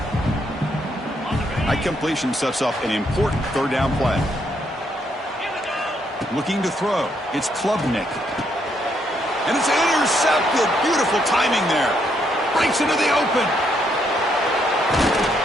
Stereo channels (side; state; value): both; normal; correlation 0.74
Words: That completion sets up an important third down play. Looking to throw. It's Klubnik. And it's intercepted. Beautiful timing there. Breaks into the open.